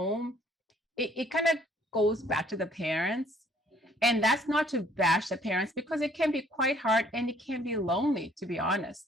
it kind of goes back to the parents. And that's not to bash the parents, because it can be quite hard and it can be lonely, to be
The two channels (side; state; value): both; normal; correlation 0.61